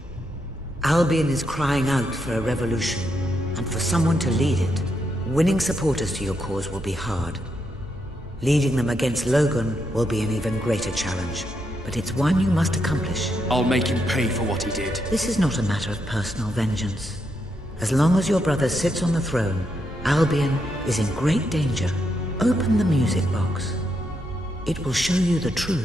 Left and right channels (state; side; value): normal; both; correlation 0.80